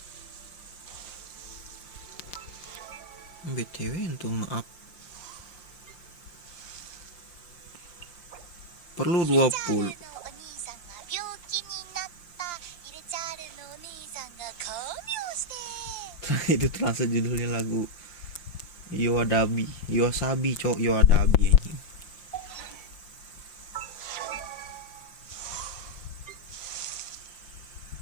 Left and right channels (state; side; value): late; right; 5.8 ms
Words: BTW untuk nge-up perlu 20. Itu translate judulnya lagu Wasabi, cok. Wasabi anjing.